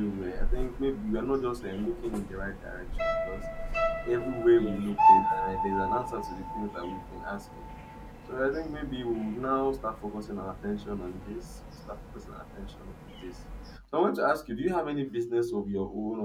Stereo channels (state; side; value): identical; both; correlation 1.00